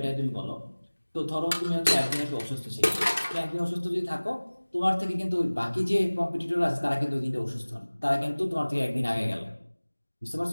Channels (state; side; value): inverted; both; correlation -1.00